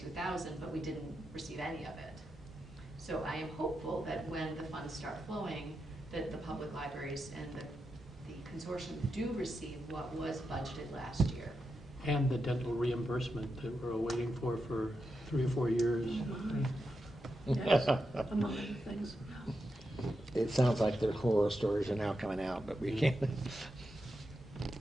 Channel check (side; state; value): both; normal; correlation 0.87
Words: but we didn't receive any of it. So I am hopeful that when the funds start flowing, that the public libraries and the consortium do receive what was budgeted last year. And the dental reimbursement that we're waiting for 3 or 4 years. Yes, among other things. It sounds like their horror stories are now coming out, but we can't.